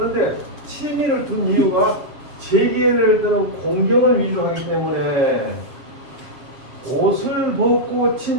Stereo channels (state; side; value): late; left; 7.4 ms